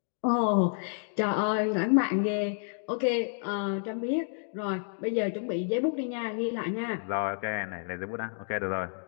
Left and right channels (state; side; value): silent; right; digital silence